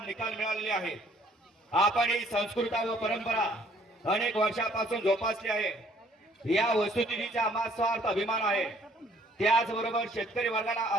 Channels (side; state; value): both; normal; correlation 0.61